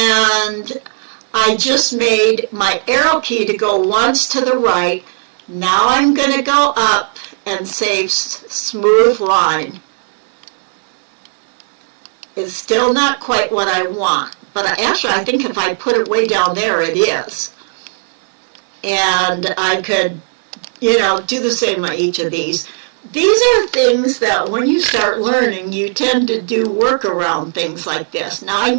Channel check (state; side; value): silent; left; digital silence